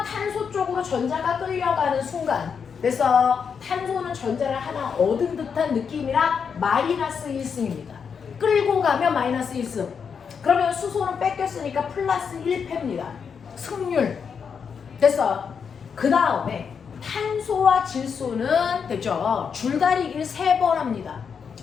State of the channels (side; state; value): right; quieter; 6.5 dB